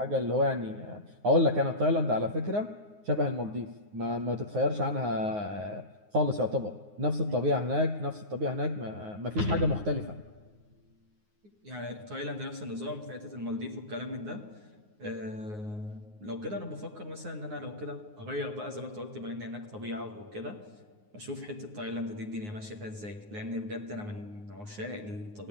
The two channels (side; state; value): left; late; 9.6 ms